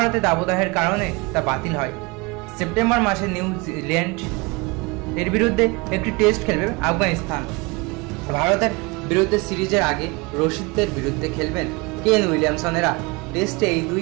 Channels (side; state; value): left; quieter; 26.6 dB